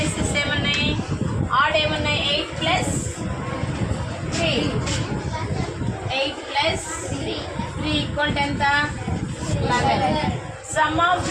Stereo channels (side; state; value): both; identical; correlation 1.00